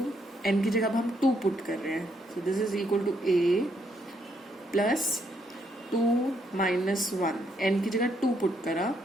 N की जगह अब हम 2 put कर रहे हैं, so this is equal to A plus 2 minus 1, N की जगह 2 पुट करा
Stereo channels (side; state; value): both; normal; correlation 0.74